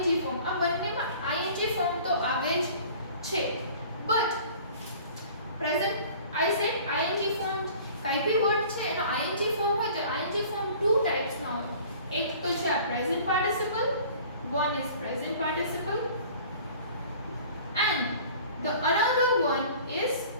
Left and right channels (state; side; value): inverted; both; correlation -0.47